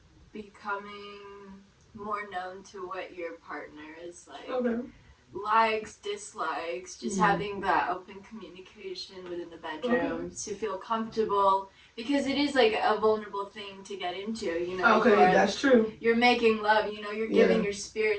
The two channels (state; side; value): identical; both; correlation 1.00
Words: becoming more known to what your partner is like. Okay. Likes, dislikes, just having that open communication within the bedroom to feel comfortable, because it is like a vulnerable thing to get into, you know. Okay, that's true. You're making love, you know, you're giving your